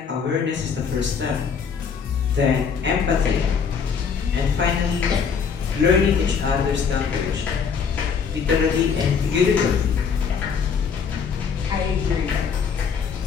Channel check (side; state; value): right; quieter; 6.3 dB